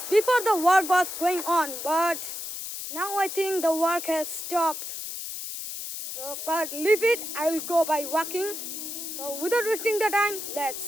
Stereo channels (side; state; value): left; noise; hiss, 7 dB below the sound